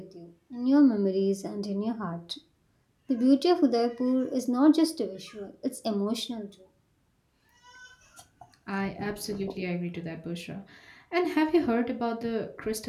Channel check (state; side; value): identical; both; correlation 1.00